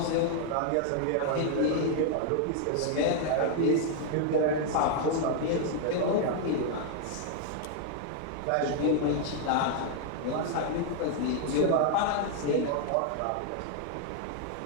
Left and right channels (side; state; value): both; different; correlation 0.00